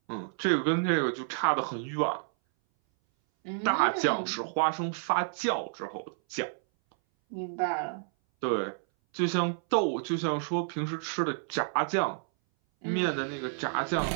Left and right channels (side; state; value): left; silent; 58 dB below the other